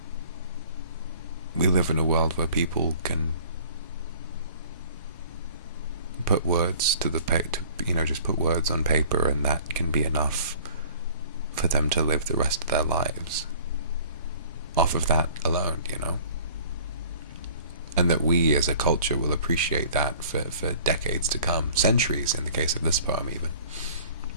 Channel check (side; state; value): both; inverted; correlation -0.49